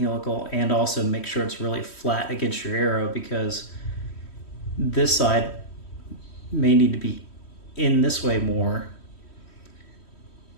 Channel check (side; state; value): right; late; 3.1 ms